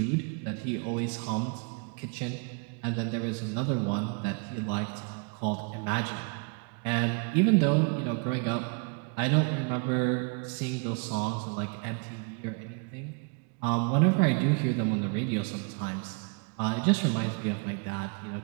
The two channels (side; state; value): left; quieter; 35.3 dB